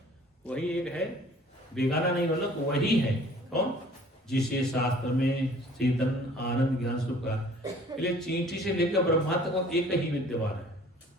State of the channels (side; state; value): both; normal; correlation 0.52